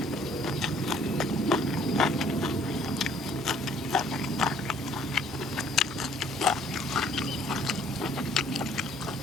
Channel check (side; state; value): both; normal; correlation 0.59